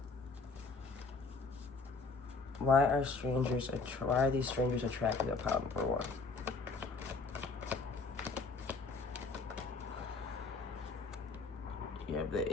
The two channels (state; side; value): quieter; right; 3.9 dB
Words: Why are these strangers attracted to pile number 1? You have